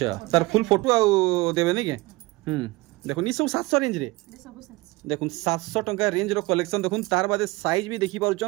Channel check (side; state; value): left; quieter; 22.3 dB